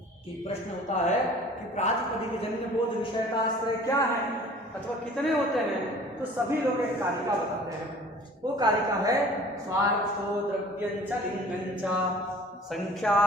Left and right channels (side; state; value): both; normal; correlation 0.48